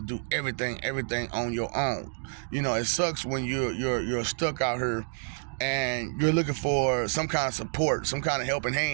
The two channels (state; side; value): silent; left; digital silence